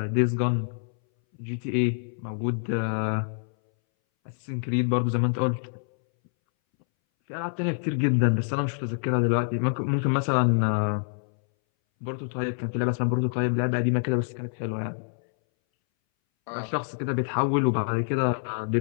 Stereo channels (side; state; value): right; silent; 61 dB below the other